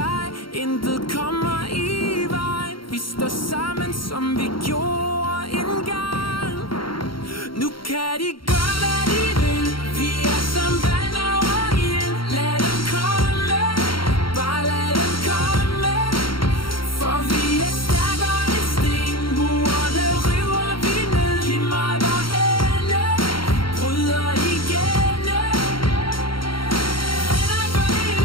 intet kommer i vejen. Vi står sammen, som vi gjorde engang. Nu kan de gøre, hvad de vil. Vi er som vand over ild. Lad dem komme, bare lad dem komme. For vi er stærkere end sten. Murene river vi ned. Lige meget hvorhenne, bryder igennem. Venner for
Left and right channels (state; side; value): late; right; 0.73 ms